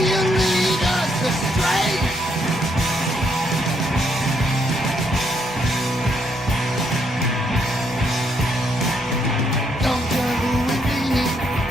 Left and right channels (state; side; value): normal; both; correlation 0.74